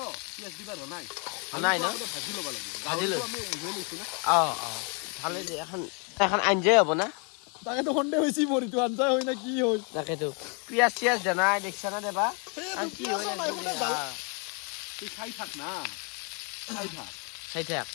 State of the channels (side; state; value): right; quieter; 36.0 dB